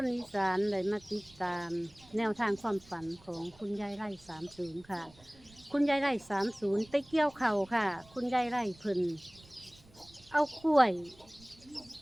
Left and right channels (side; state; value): right; noise; rumble, 25 dB below the sound